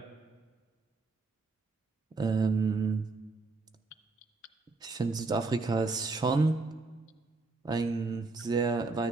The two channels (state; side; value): quieter; left; 3.7 dB